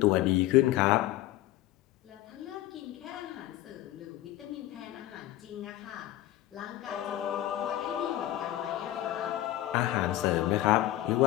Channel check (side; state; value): right; quieter; 14.9 dB